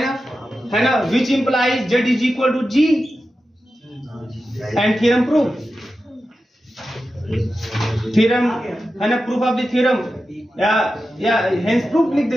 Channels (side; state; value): both; normal; correlation 0.92